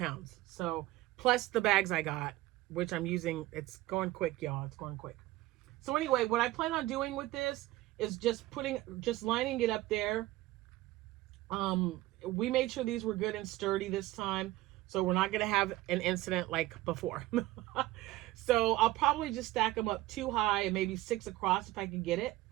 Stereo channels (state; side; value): quieter; left; 17.4 dB